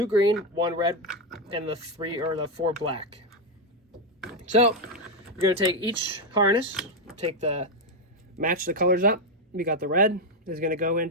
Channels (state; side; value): normal; both; correlation 0.05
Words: green, 1 red, and the 4 black. So you're going to take each harness, match the colors up. We got the red is going to go